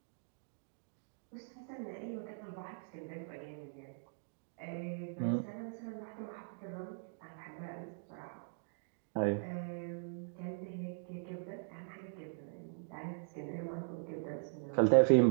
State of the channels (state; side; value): silent; left; digital silence